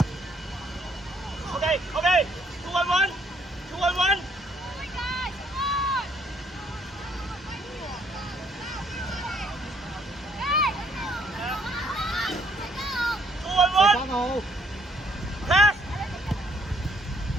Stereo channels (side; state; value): both; normal; correlation 0.67